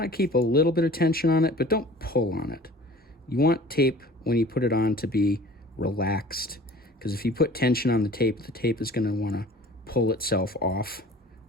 of keep a little bit of tension on it, but don't pull on it. You want tape, when you put it on, to be relaxed, because if you put tension on the tape is going to want to pull itself off,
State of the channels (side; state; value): both; normal; correlation 0.46